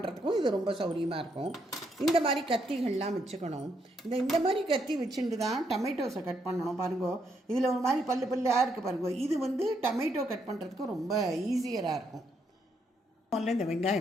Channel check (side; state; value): both; normal; correlation 0.76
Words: இது ரொம்ப சௌரியமாக இருக்கும். இந்த மாதிரி கத்திகள்லாம் வச்சுக்கணும். இந்த மாதிரி கத்தி வச்சுட்டு தான் டொமேட்டோஸை கட் பண்ணணும். பாருங்கோ, இதில் ஒரு மாதிரி பல்லாக இருக்குது பாருங்கோ. இது டொமேட்டோ கட் பண்ணுறதுக்கும் ரொம்ப ஈஸியராக இருக்கும். முதல்ல இந்த